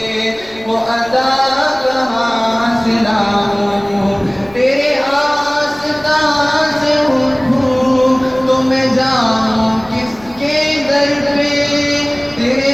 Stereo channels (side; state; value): left; noise; rumble, 24 dB below the sound